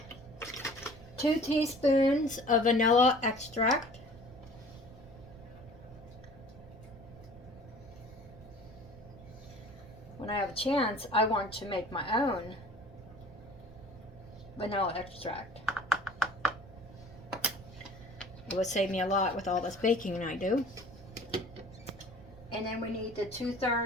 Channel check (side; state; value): right; noise; rumble, 19 dB below the sound